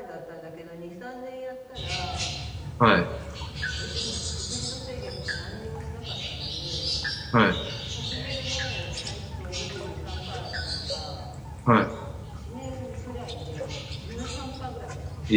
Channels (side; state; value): both; identical; correlation 1.00